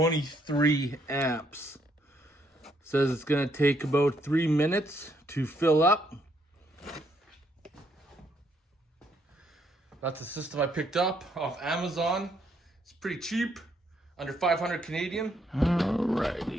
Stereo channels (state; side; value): normal; both; correlation 0.72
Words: amps. Says it's going to take about 3 minutes to fill up. That's the system I picked up off Amazon. It's pretty cheap, under 500 Canadian.